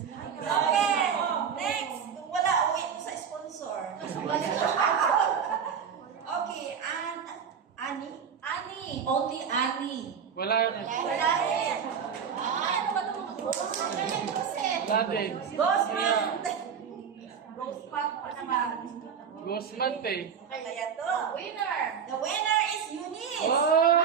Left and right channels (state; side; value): quieter; left; 7.2 dB